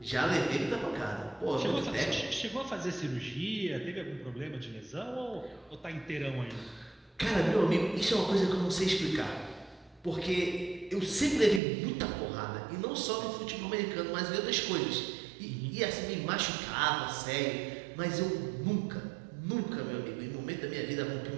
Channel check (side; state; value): left; drops out; at 11.6 s